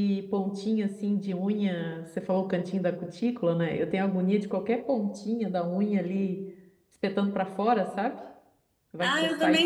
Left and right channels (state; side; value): identical; both; correlation 1.00